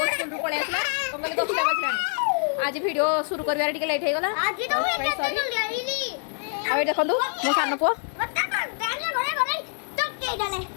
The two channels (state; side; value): silent; right; 61 dB below the other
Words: स्कूल रु पळे आसला कंगल दसटा बजलानी। आज वीडियो शुरू करबार टिके लेट हे गला सॉरी। आ देखंतु मो सानो पो